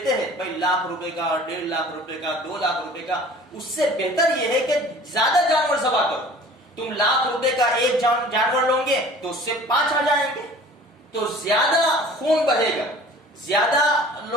ہیں، بھائی لاکھ روپے کا، 1.5 لاکھ روپے کا، 2 لاکھ روپے کا، اس سے بہتر یہ ہے کہ زیادہ جانور ذبح کرو۔ تم لاکھ روپے کا ایک جانور لو گے تو اس سے 5 آ جائیں گے، تو زیادہ خون بہے گا، زیادہ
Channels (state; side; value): normal; both; correlation 0.47